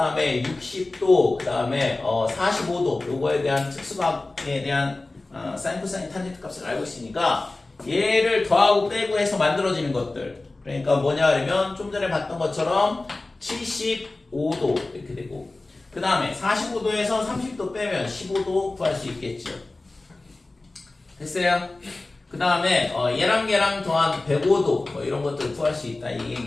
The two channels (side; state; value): right; quieter; 3.1 dB